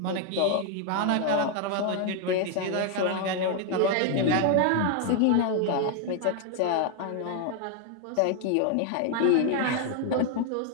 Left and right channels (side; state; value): both; different; correlation 0.00